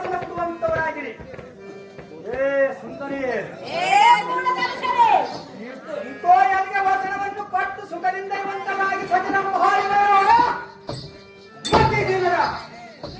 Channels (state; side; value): identical; both; correlation 1.00